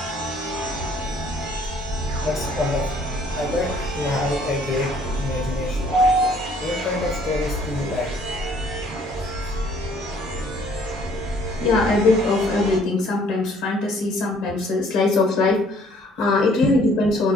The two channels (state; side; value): normal; both; correlation 0.60